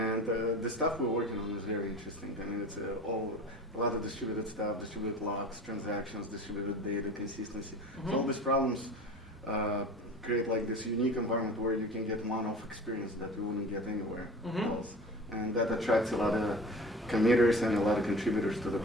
the stuff we're working on is very interesting. I mean, it's a lot of distributed stuff, distributed logs, transactions, distributed data, consistency. So all these problems create like this unique environment where you can get one-off experience that you wouldn't get anywhere else. And that attracts a lot of committers and a lot of contributors to the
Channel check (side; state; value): both; normal; correlation 0.37